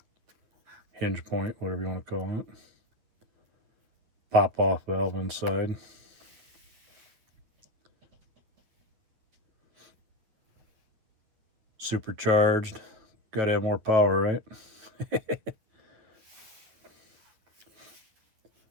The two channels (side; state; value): left; late; 9.4 ms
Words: hinge point, whatever you want to call it. Pop-off valve inside. Supercharged. Got to have more power, right?